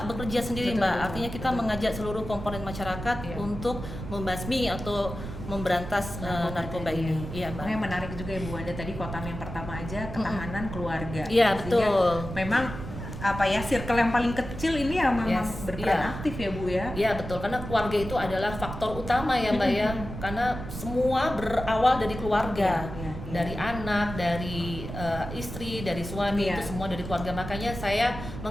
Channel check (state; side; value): noise; right; rumble, 9 dB below the sound